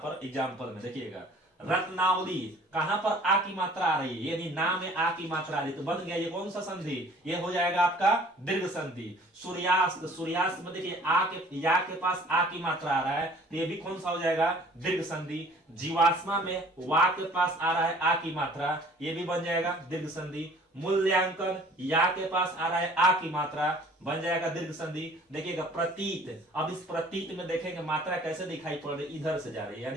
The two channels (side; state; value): both; normal; correlation 0.52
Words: एग्जाम्पल में, देखिएगा रत्नावली, कहां पर आ की मात्रा आ रही है, यानी नाम में आ की मात्रा आ रही है, तो बन गया ये कौन सा संधि, ये हो जाएगा आपका दीर्घ संधि। सूर्यास्त, सूर्यास्त में देखिए आ के, या के पास आ की मात्रा आ रहा है, तो ये भी कौन सा हो जाएगा, दीर्घ संधि। जीवाश्मा में वा के पास आ रहा है आ की मात्रा, ये भी बन जाएगा दीर्घ संधि। मूल्यांकन, या के पास आ रहा है आ की मात्रा, बन जाएगा दीर्घ संधि। देखिएगा प्रतीत, अब इस प्रतीत में देखेंगे मात्रा कैसे दिखाई पड़ रही, इधर से जा रही है,